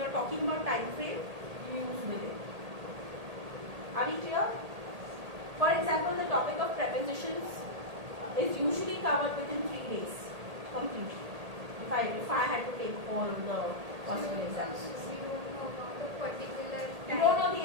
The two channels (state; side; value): late; left; 1.8 ms